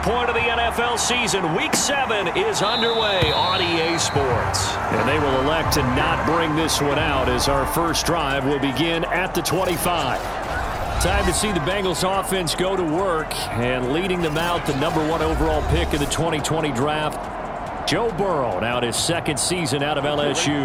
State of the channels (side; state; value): both; identical; correlation 1.00